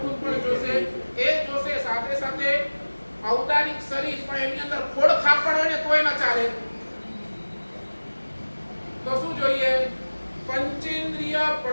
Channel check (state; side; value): inverted; both; correlation -1.00